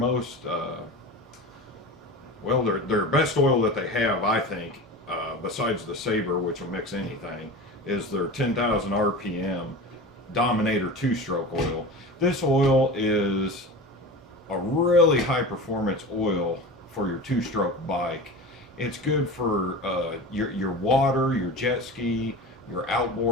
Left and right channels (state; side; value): normal; both; correlation 0.31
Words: their best oil that they have, I think, besides the Sabre, which will mix anything, is their 10,000 RPM Dominator two-stroke oil. This oil is a really high performance oil for your two-stroke bike. It's good for your water, your jet ski, your